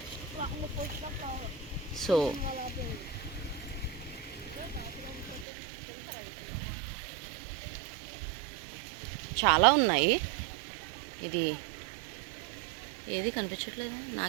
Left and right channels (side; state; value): left; drops out; at 5.5 s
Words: సో చాలా ఉన్నాయి. ఇది ఏది కనిపించట్లేదా?